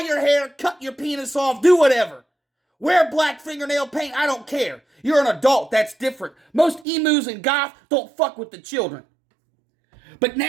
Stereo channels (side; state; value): left; drops out; at 6.9 s